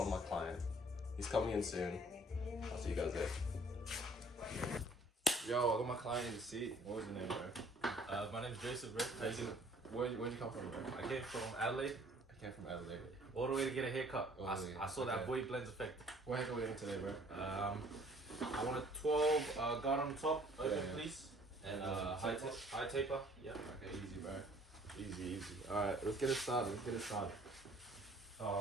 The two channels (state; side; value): normal; both; correlation 0.55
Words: my client. He's coming in soon. I'll see you guys there. Yo, I got my client in the seat. What was your name, bro? My name's Joseph, bro. Where'd you come from, bro? I came from Adelaide. I came from Adelaide. All the way to get a haircut. Oh, I saw that boy blends effect. What haircut are we getting today, bro? I want a 12 guard on top, open please. And high taper. Yeah. Okay, easy, bro. Easy. Alright, let's get it started.